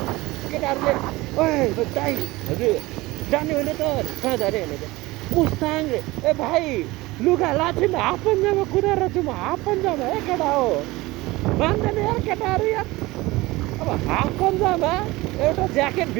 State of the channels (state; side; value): quieter; left; 20.5 dB